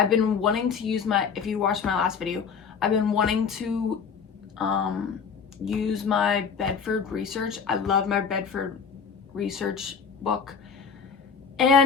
been wanting to use if you watched my last video, I've been wanting to use my Bedford research. I love my Bedford research book.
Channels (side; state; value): right; quieter; 6.2 dB